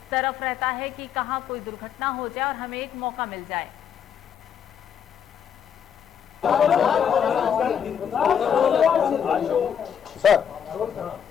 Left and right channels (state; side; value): quieter; right; 8.2 dB